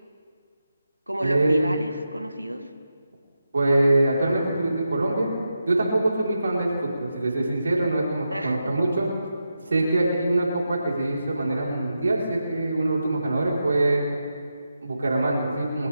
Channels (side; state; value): both; inverted; correlation -0.88